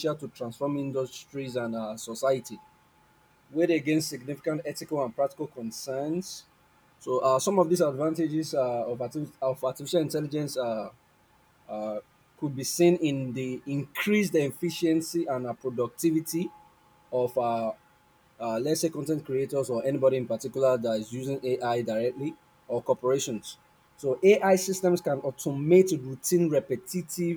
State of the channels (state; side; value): identical; both; correlation 1.00